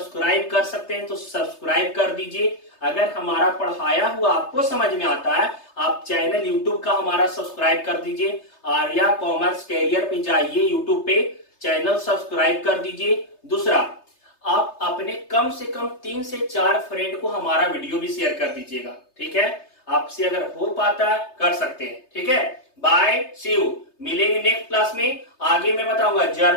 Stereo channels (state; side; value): late; right; 3.3 ms